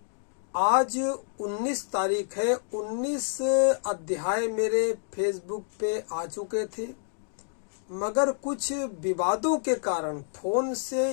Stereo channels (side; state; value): right; silent; digital silence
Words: आज 19 तारीख है। 19 अध्याय मेरे फेसबुक पे आ चुके थे, मगर कुछ विवादों के कारण फोन से